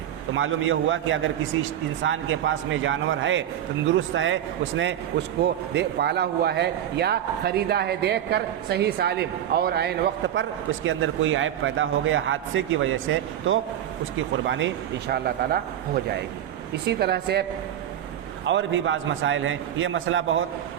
تو معلوم یہ ہوا کہ اگر کسی انسان کے پاس میں جانور ہے، تندرست ہے، اس نے اس کو پالا ہوا ہے یا خریدا ہے دیکھ کر صحیح سالم، اور عین وقت پر اس کے اندر کوئی عیب پیدا ہو گیا حادثے کی وجہ سے، تو اس کی قربانی انشاءاللہ تعالی ہو جائے گی۔ اسی طرح سے اور بھی بعض مسائل ہیں، یہ مسئلہ بہت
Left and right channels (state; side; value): quieter; left; 10.8 dB